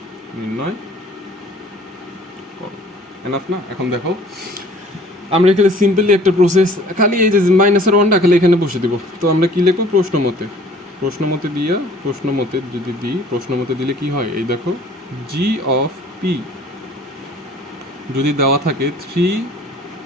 নির্ণয় করো। এনাফ না। এখন দেখো আমরা এখানে সিম্পলি একটা প্রসেস, খালি এই যে -1টা খালি এখানে বসে দিব। তো আমরা কি লিখবো, প্রশ্নমতে দিয়া, প্রশ্নমতে যদি দিই, প্রশ্নমতে দিলে কি হয়, এই দেখো জি অফ পি যদি দেওয়া থাকে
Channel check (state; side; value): normal; both; correlation 0.52